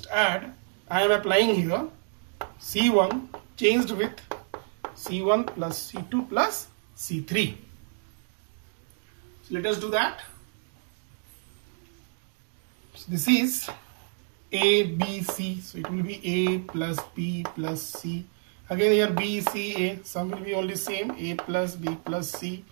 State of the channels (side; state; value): left; silent; 59 dB below the other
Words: add. I am applying here C1 changed with C1 plus C2 plus C3. So let us do that. So this is A, B, C. So it will be A plus B plus C. Again here B, C, A. Some will be only same. A plus B plus C.